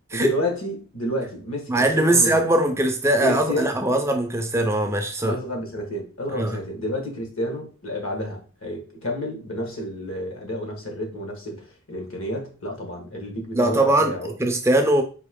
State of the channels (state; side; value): normal; both; correlation 0.48